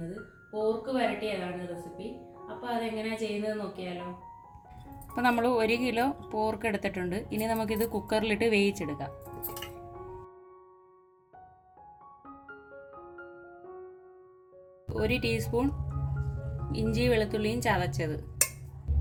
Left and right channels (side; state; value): both; identical; correlation 1.00